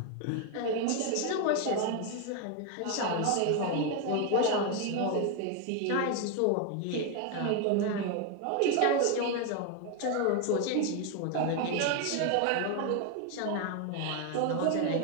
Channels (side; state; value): both; different; correlation 0.01